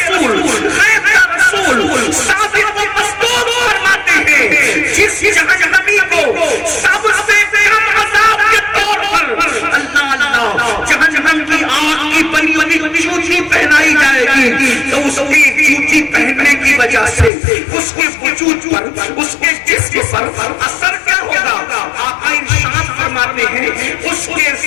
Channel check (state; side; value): drops out; right; at 17.3 s